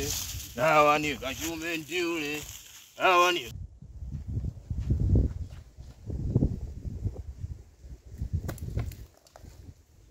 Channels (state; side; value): identical; both; correlation 1.00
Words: dawa ni kachume ndiule, dawa ni